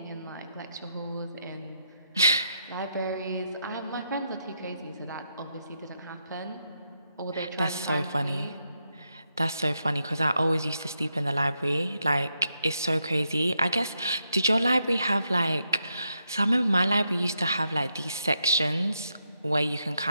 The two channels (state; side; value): inverted; both; correlation -0.81